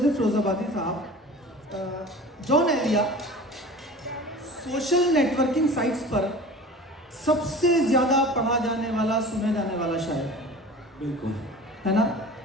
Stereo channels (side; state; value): both; normal; correlation 0.39